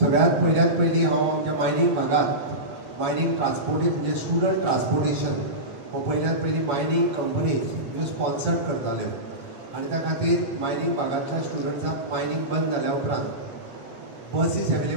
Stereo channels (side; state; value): left; late; 8.2 ms